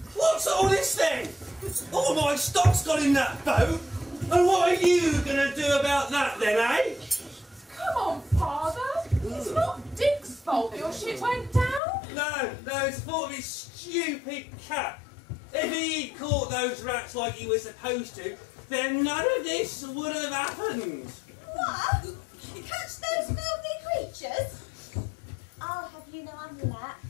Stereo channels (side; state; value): right; drops out; at 11.8 s